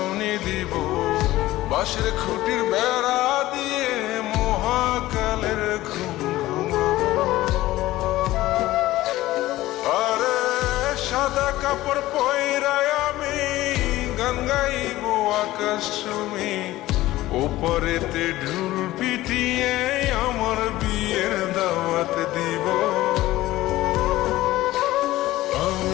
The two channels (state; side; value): quieter; right; 16.5 dB